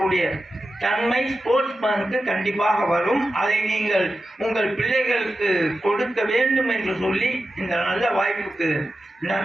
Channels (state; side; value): normal; both; correlation 0.91